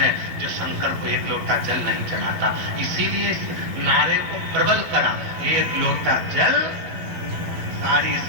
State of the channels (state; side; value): late; left; 11 ms